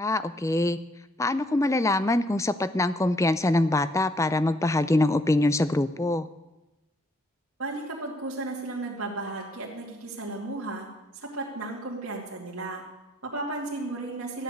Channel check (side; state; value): both; normal; correlation 0.69